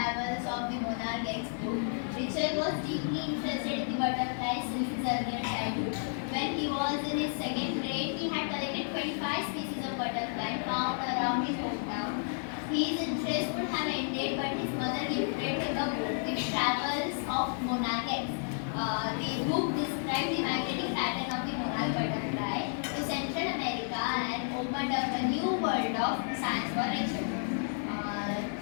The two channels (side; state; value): right; silent; 57 dB below the other